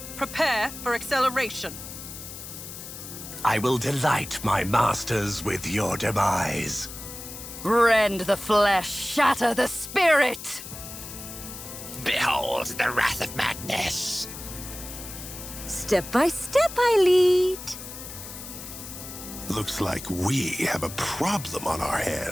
prepare for acceleration. I will delight my masters with your demise. Rend the flesh, shatter the spirit! Behold the wrath of madness. Step by step I lead. Looks like we have a problem on our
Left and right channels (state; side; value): noise; left; hiss, 11 dB below the sound